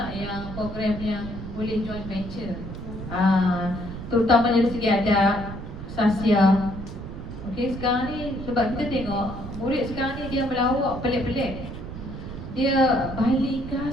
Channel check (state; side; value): noise; right; rumble, 9 dB below the sound